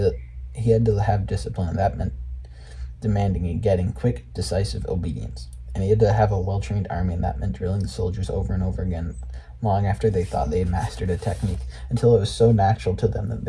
to have discipline, and that meant demanding and getting quick, decisive obedience. And he had to have a well-trained army, and that meant drilling the soldiers over and over again, long after they thought they had mastered a technique, until it was so natural to them that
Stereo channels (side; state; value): both; identical; correlation 1.00